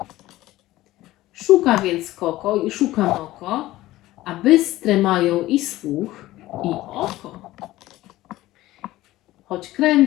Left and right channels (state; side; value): quieter; right; 16.5 dB